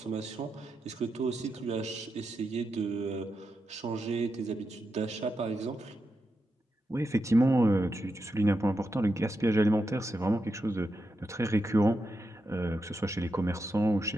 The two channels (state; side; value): normal; both; correlation 0.87